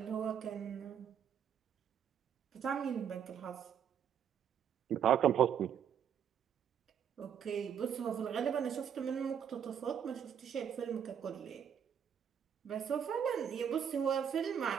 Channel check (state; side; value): quieter; left; 8.4 dB